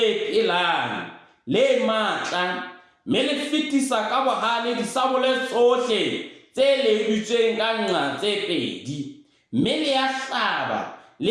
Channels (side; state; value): both; identical; correlation 1.00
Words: pelang, le matla, mme le fetisa ka bohale disabole tsohle tse ledutsweng ka nqa tse pedi, mme le ya hlaba,